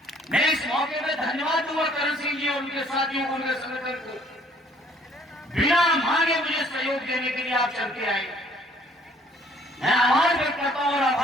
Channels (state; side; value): normal; both; correlation 0.60